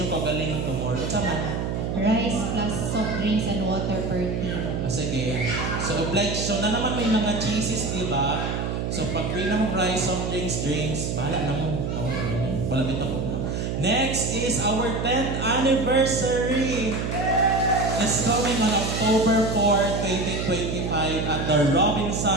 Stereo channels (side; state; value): right; noise; hum, 2 dB below the sound